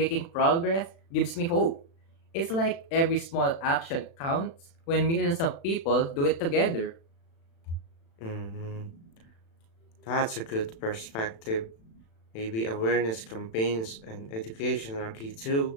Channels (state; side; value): late; right; 36 ms